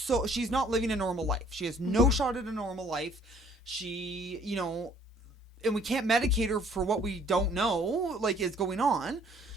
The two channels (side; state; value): both; normal; correlation 0.58